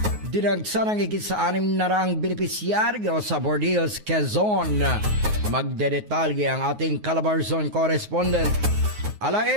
Dinagsa ng higit sa 600 benepisyaryo sa Bordeos, Quezon. Magdedetalye ang ating Calabarzon correspondent.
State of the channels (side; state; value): left; late; 9.5 ms